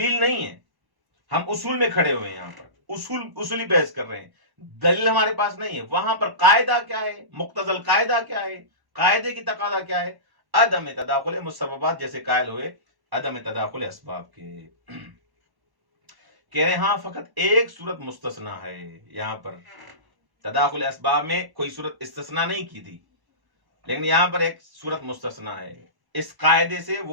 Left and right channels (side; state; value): left; late; 1.1 ms